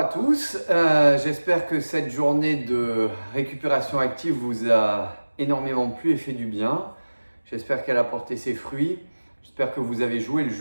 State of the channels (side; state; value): both; inverted; correlation -1.00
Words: tous, j'espère que cette journée de récupération active vous a énormément plu et fait du bien. J'espère qu'elle a porté ses fruits. J'espère que vous avez joué le